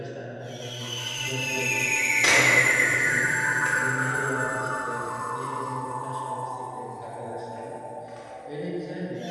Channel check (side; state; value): both; identical; correlation 1.00